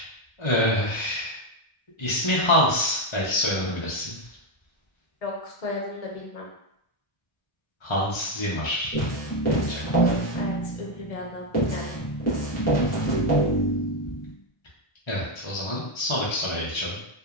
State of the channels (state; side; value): late; right; 1.3 ms